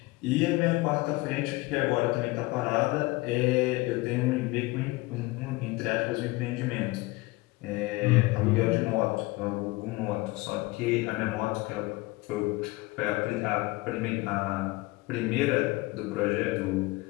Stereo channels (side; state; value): right; quieter; 21.8 dB